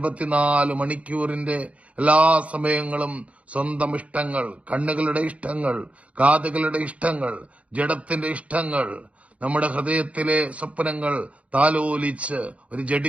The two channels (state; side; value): late; left; 0.065 ms